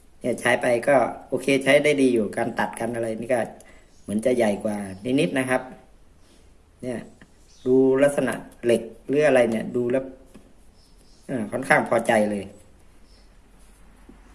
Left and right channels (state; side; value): identical; both; correlation 1.00